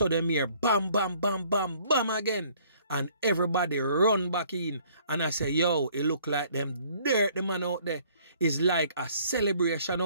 them here bam, bam, bam, bam, bam again. And everybody run back in and I say, yo, it look like them dirt the man out there. It's like a celebration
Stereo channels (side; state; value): both; inverted; correlation -0.59